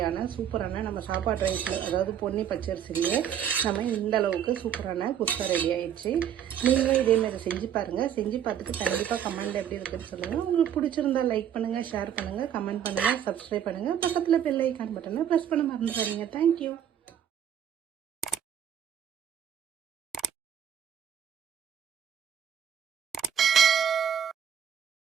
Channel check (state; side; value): quieter; left; 9.3 dB